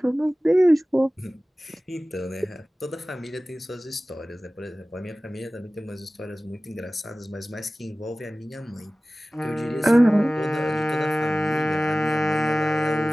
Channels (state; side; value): normal; both; correlation 0.97